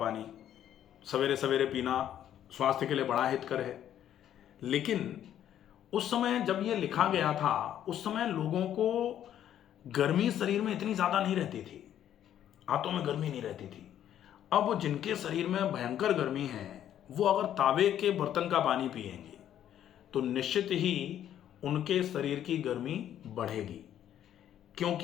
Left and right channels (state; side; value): quieter; right; 10.8 dB